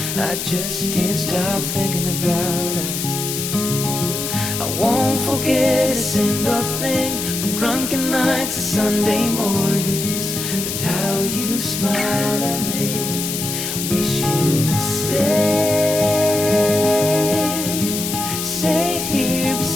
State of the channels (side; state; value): left; noise; hiss, 4 dB below the sound